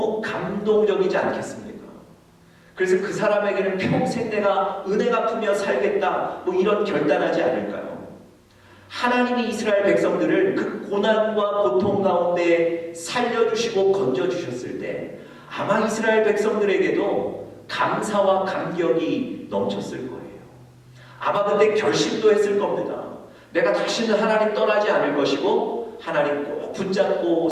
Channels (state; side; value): identical; both; correlation 1.00